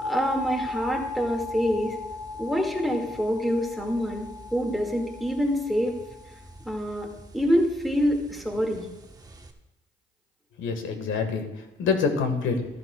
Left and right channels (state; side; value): normal; both; correlation 0.74